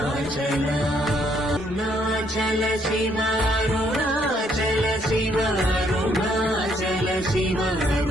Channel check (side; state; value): both; normal; correlation 0.69